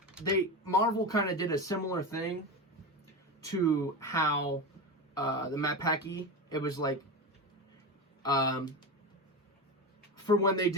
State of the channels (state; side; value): normal; both; correlation 0.21